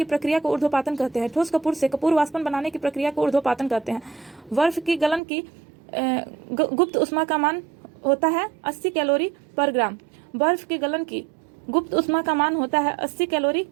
प्रक्रिया को ऊर्ध्वपातन कहते हैं। ठोस कपूर से कपूर वाष्पन बनाने की प्रक्रिया को ऊर्ध्वपातन कहते हैं। बर्फ की गलन की गुप्त उष्मा का मान होता है 80 कैलोरी पर ग्राम। बर्फ की गलन की गुप्त उष्मा का मान होता है 80 कैलोरी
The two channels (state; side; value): drops out; left; at 5.2 s